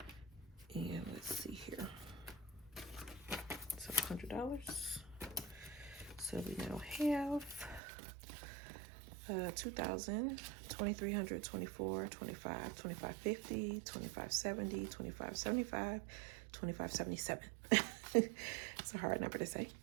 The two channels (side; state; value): left; drops out; at 7.8 s